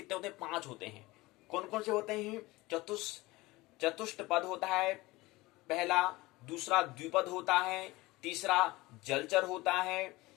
होते हैं? 5 होते हैं। कौन कौन से होते हैं? चतुष्टपद होता है पहला, दूसरा द्विपद होता है, तीसरा जलचर होता है,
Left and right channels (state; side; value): quieter; right; 20.6 dB